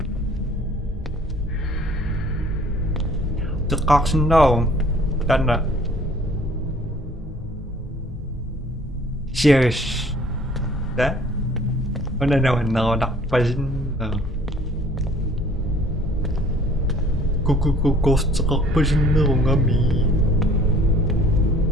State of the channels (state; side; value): normal; both; correlation 0.54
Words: Kaksin daw. Tanda. Cheers. Da? Ano naman ako nakpasin na. Kukukukos sa kakpasin na akong kami.